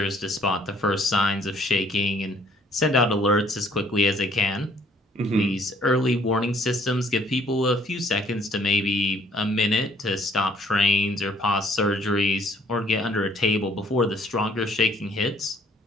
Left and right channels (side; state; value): both; normal; correlation 0.61